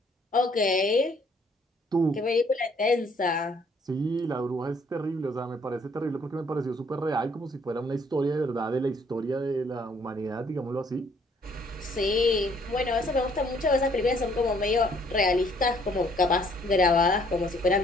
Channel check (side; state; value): both; normal; correlation 0.63